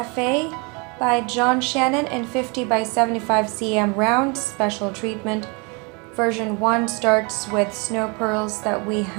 by Shannon in 50 by 75 cm round special treatment. Version 1 starts with snow pearls that we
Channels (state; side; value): quieter; left; 30.9 dB